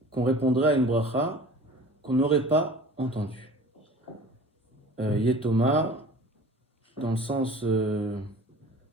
qu'on répondrait à une bracha qu'on n'aurait pas entendue. Yetoma, dans le sens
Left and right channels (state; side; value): normal; both; correlation 0.43